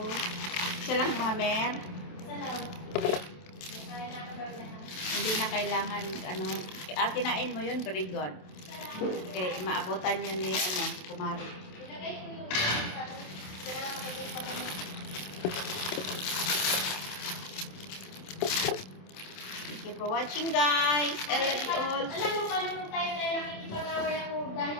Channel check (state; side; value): late; right; 27 ms